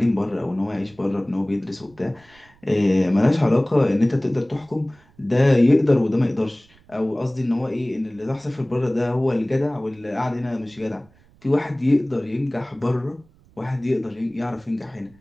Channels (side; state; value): right; noise; rumble, 29 dB below the sound